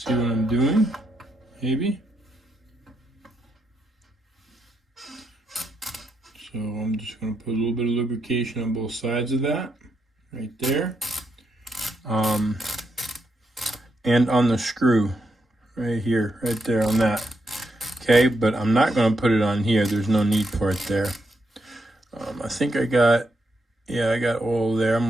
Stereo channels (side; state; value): both; normal; correlation 0.81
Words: what I'm doing, maybe. So I'm just going to put a little bit of lubrication on both sides of that, right there. And on the screw, right here, right there on that. Okay, but I'm not going to put it on here. There's no need for it there. I think I got oil there. I'm